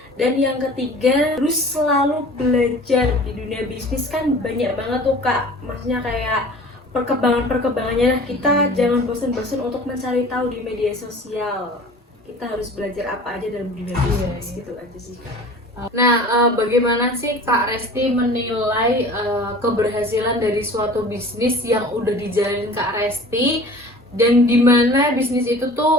Dan yang ketiga, harus selalu belajar. Di dunia bisnis kan banyak banget tuh Kak, maksudnya kayak perkembangannya. Kita jangan bosan-bosan untuk mencari tahu di media sosial. Kita harus belajar apa aja dalam dunia bisnis, gitu aja sih Kak. Nah, bagaimana sih Kak Resti menilai keberhasilan dari suatu bisnis yang udah dijalanin Kak Resti, dan dimana bisnis itu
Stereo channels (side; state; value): both; normal; correlation 0.43